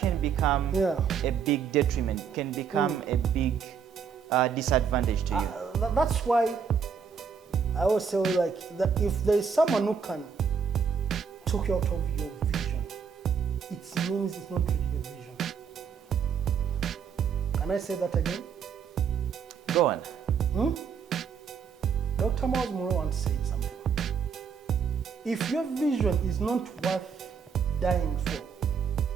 become a big detriment, can become a big disadvantage to you. That's why I always say, like, that if there is someone who can talk you out of your vision, it means it's not really your vision. Can I say that again? Go on. Dr. Miles Monroe once said something. If your vision is not worth dying for,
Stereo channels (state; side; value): quieter; left; 6.6 dB